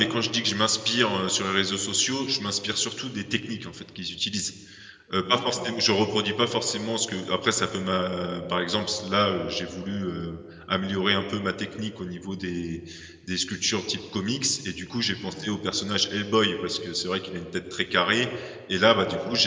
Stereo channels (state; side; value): identical; both; correlation 1.00